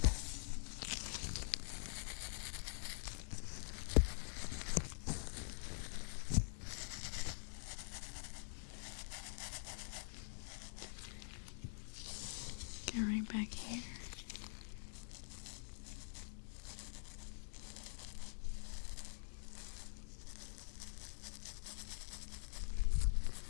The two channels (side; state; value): right; silent; digital silence